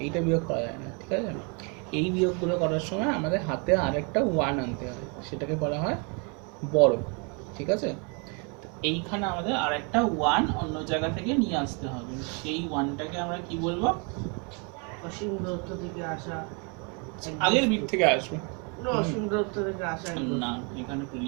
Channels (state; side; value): quieter; left; 34.6 dB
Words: এইটা বিয়োগ করা যায় না, ঠিক আছে? এই বিয়োগগুলো করার সময় আমাদের হাতে আরেকটা 1 আনতে হয়, সেটাকে বলা হয় বড়, ঠিক আছে? এইখানে আমাদের আরেকটা 1 অন্য জায়গা থেকে নিয়ে আসতে হবে, সেই 1টাকে আমরা কি বলবো? অসীম দূরত্ব থেকে আসা আগের বিট থেকে আসবে না, অসীম দূরত্ব থেকে আসা না, এখানে